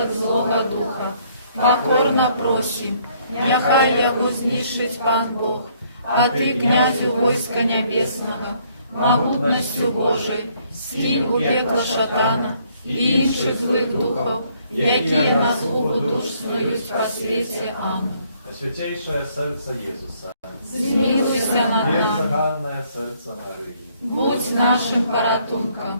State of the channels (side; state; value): both; inverted; correlation -0.66